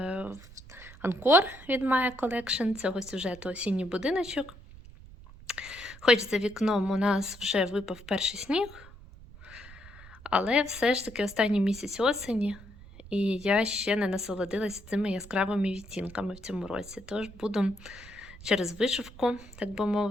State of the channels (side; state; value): right; noise; rumble, 19 dB below the sound